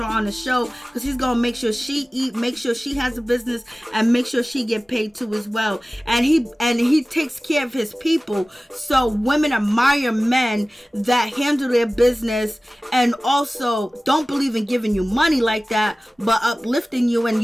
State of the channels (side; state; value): both; normal; correlation 0.97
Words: on the show because he's going to make sure she eat, make sure she has a business, and make sure she get paid too as well. And he takes care of his people. So women admire men that handle their business and also don't believe in giving you money like that, but uplifting you, and